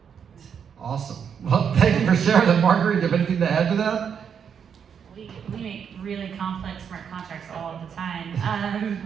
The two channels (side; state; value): left; quieter; 7.4 dB